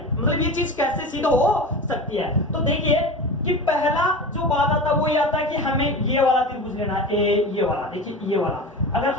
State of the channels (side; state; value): both; normal; correlation 0.30